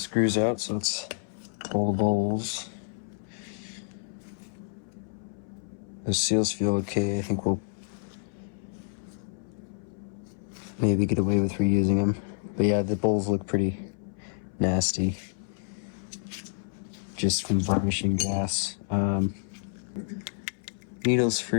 out, so let's pull the bowls. The seals feel okay. I think we'll maybe get away with reusing them. But yeah, the bowls look pretty nasty, just from varnishing gas. Needles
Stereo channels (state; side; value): silent; right; 59 dB below the other